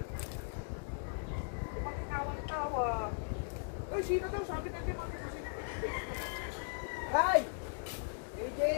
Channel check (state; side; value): silent; right; digital silence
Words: Tawa. Ay, sino daw? Sabi niya, hindi mag-ipasip. Kai!